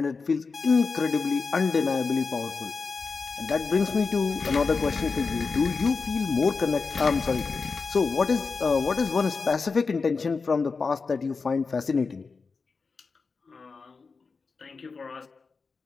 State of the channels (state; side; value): quieter; right; 4.6 dB